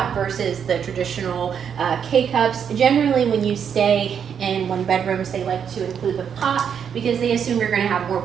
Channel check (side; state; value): left; quieter; 7.7 dB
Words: versus the traditional K-cups. Generally, when you stay in one bedrooms, they like to include the pot because they assume you're going to have more